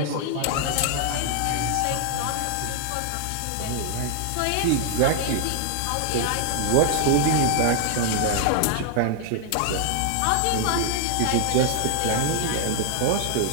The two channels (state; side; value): different; both; correlation 0.00